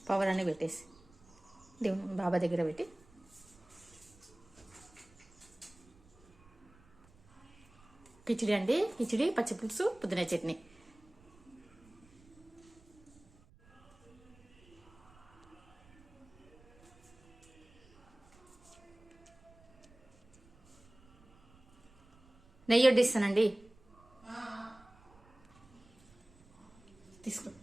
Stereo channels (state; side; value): noise; right; rumble, 28 dB below the sound